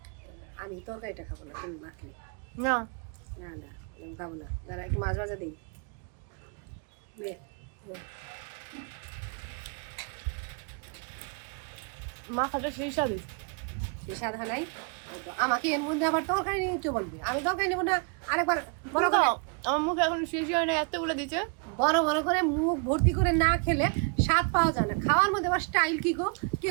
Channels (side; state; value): left; quieter; 37.9 dB